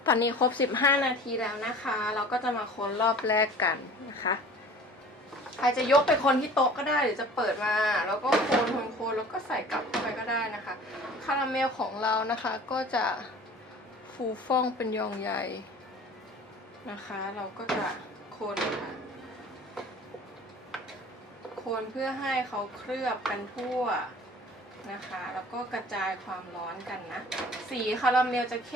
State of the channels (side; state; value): both; normal; correlation 0.45